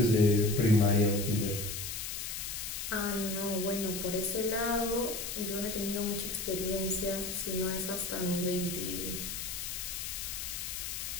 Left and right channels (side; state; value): left; noise; hiss, 5 dB below the sound